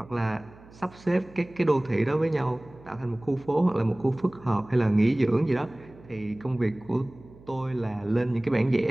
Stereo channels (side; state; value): right; noise; hum, 23 dB below the sound